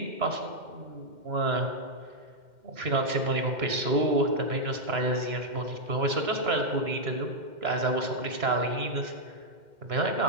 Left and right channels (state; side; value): late; left; 2.1 ms